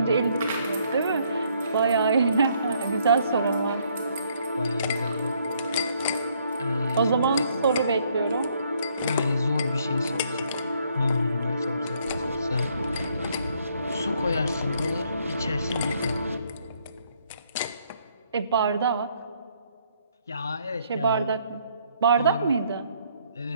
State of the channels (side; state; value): both; inverted; correlation -0.68